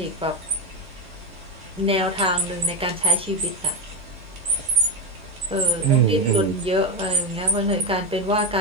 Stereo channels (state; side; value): normal; both; correlation 0.13